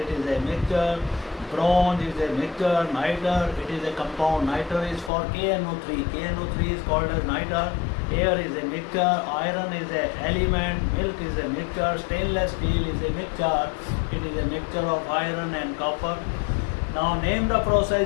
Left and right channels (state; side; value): drops out; right; at 5.1 s